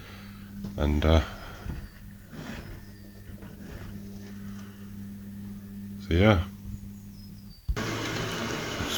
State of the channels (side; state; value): both; identical; correlation 1.00